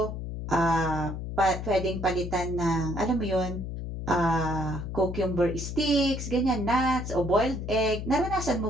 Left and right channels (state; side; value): noise; left; hum, 6 dB below the sound